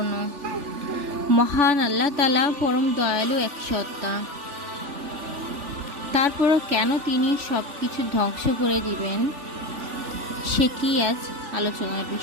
মহান আল্লাহ তাআলা পরম দয়ালু এক সত্তা। তারপরও কেন তিনি সব কিছু ধ্বংস করে দিবেন, সেটি আজ আলোচনার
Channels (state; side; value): late; left; 3.4 ms